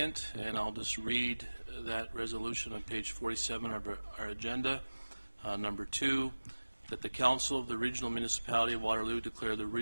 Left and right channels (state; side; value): inverted; both; correlation -1.00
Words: and I'll just read that resolution on page 47 of our agenda. Number 2, that the Council of the Regional Municipality of Waterloo declare the